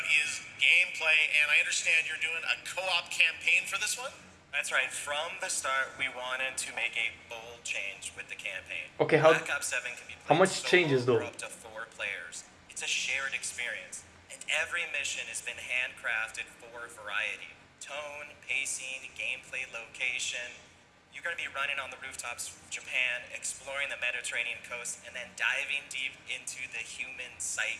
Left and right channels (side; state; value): both; identical; correlation 1.00